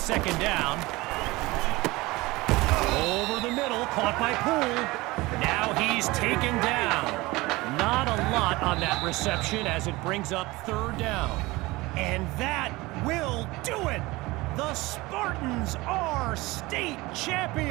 down. Over the middle, caught by Poole. Now he's taken down. Not a lot on that reception as it brings up third down. And that will do it. The Spartans are state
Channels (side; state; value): left; quieter; 21.2 dB